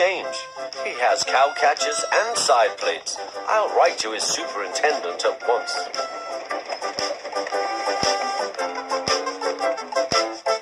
He has cowcatchers and side plates. I'll write to his superintendent at once."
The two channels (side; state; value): both; identical; correlation 1.00